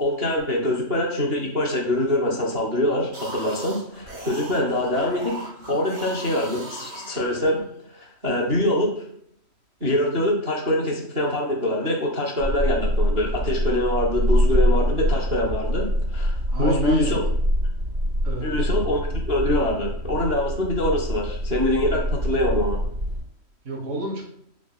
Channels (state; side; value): late; left; 3.1 ms